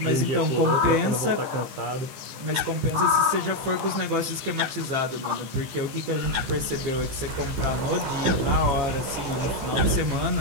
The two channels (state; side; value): late; left; 15 ms